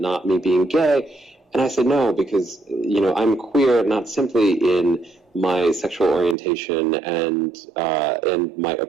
me being gay? And I said no, because, I'm queer not simply in my sexual orientation and my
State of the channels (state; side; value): drops out; left; at 6.4 s